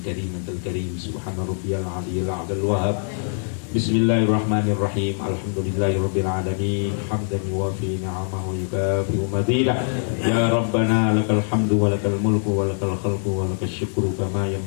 أنت الكريم سبحان ربي العلي الأعلى الوهاب بسم الله الرحمن الرحيم الحمد لله رب العالمين حمدا يوافي نعمه ويكافئ مزيدا يا ربنا لك الحمد ولك الملك ولك الخلق ولك الشكر كما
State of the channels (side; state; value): right; silent; 63 dB below the other